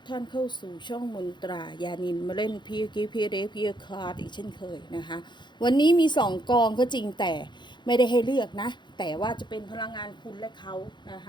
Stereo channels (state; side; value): late; right; 0.22 ms